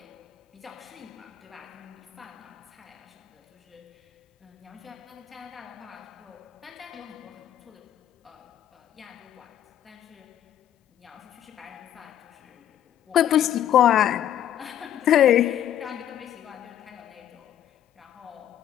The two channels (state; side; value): quieter; right; 10.9 dB